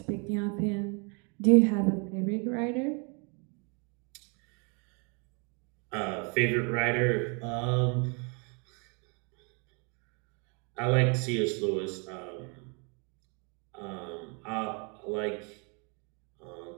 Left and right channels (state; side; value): quieter; left; 34.5 dB